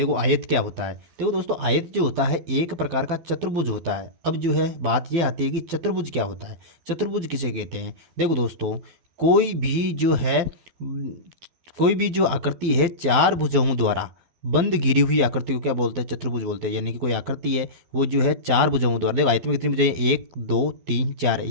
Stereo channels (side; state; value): left; late; 12 ms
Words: आयत क्या होता है। देखो दोस्तों, आयत जो होता है एक प्रकार का चतुर्भुज होता है। अब जो है बात ये आती है कि चतुर्भुज क्या होता है, चतुर्भुज किसे कहते हैं। देखो दोस्तों, कोई भी जो है कोई भी जो आकृति है चार भुजाओं द्वारा बंद घिरी हुई आकृति को क्या बोलते हैं, चतुर्भुज बोलते हैं। यानी कि कोई आकृति है वो जो है चार भुजाओं द्वारा, देखो आयत में कितनी भुजाएं, एक दो तीन चार,